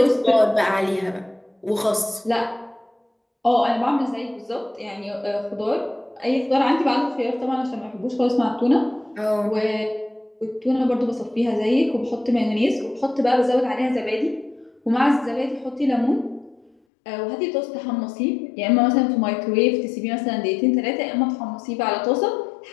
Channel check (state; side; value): drops out; right; at 16.7 s